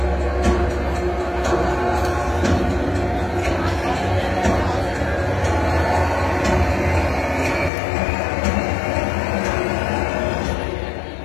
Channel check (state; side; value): drops out; right; at 7.7 s